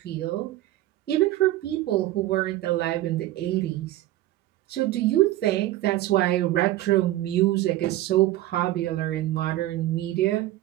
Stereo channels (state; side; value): quieter; left; 15.4 dB